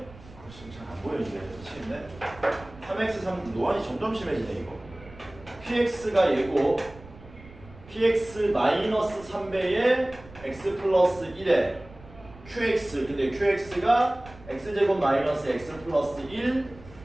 지금 잘 안 보여 이제 미치겠네. 3x3 노안이 점점 심해지네 이거. PX가 얘고 PX 마이너스 3배의 x 플러스 1에 QX 근데 QX가 x제곱 마이너스 x 플러스 1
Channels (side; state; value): right; noise; rumble, 20 dB below the sound